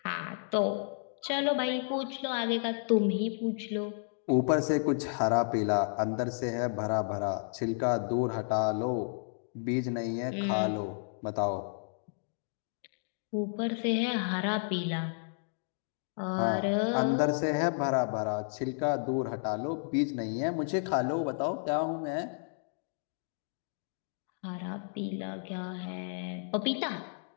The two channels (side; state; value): right; silent; digital silence